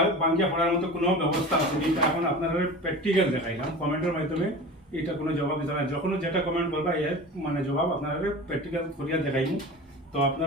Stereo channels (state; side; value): normal; both; correlation 0.34